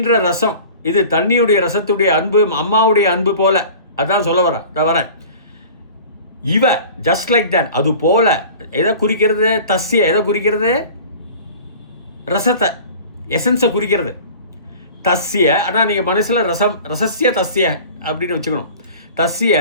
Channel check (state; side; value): inverted; both; correlation -0.42